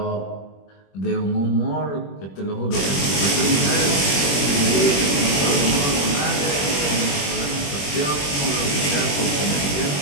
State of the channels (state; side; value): late; right; 21 ms